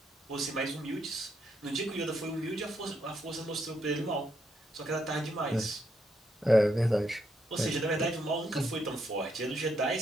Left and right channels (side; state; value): both; normal; correlation 0.77